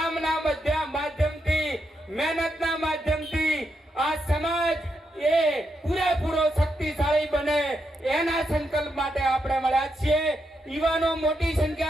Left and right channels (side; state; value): both; normal; correlation 0.82